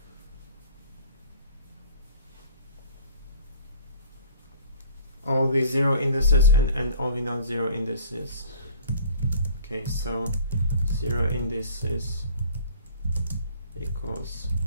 zero indices and all the non-zero indices. Okay, so 0 indices equals,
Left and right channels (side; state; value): both; inverted; correlation -0.50